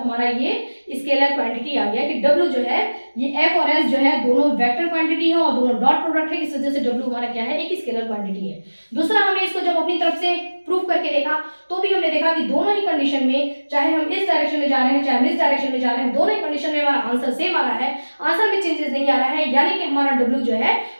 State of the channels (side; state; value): both; inverted; correlation -1.00